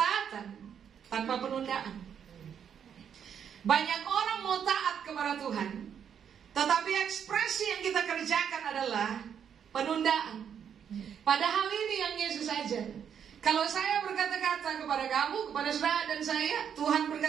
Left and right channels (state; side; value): quieter; left; 8.1 dB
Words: tanpa penundaan. Banyak orang mau taat kepada Tuhan, tetapi ekspresi yang kita kerjakan adalah penundaan. Padahal ini yang Yesus ajar. Kalau saya berkata-kata kepada kamu, kepada saudara dan saya, Tuhan